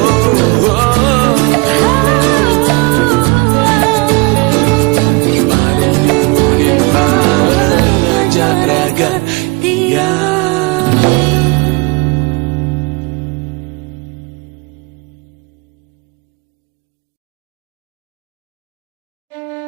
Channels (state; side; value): quieter; left; 27.9 dB